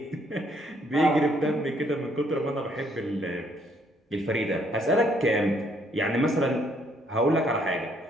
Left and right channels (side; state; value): both; normal; correlation 0.68